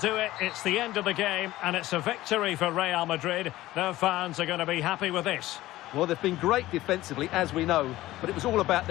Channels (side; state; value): right; quieter; 16.3 dB